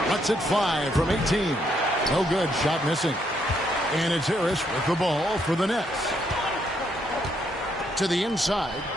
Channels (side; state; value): both; normal; correlation 0.74